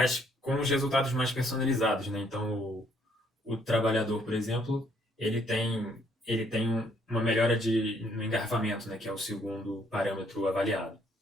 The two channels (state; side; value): normal; both; correlation 0.67